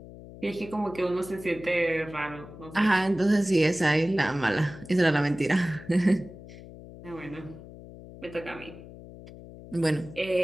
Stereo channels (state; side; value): noise; left; hum, 16 dB below the sound